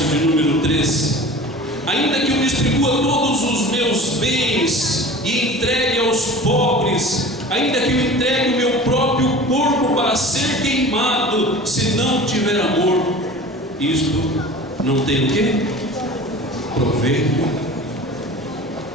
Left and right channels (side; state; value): both; normal; correlation 0.39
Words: de número 13: ainda que eu distribua todos os meus bens e entregue aos pobres, ainda que eu entregue o meu próprio corpo para ser queimado, se não tiver amor, isto não tem o quê? Proveito